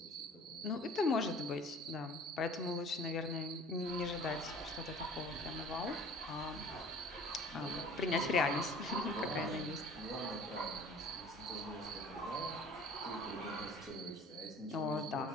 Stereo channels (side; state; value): both; normal; correlation 0.48